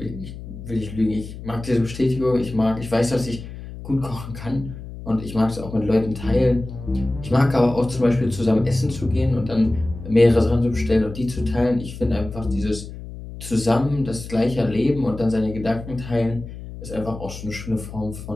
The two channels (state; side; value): noise; left; hum, 12 dB below the sound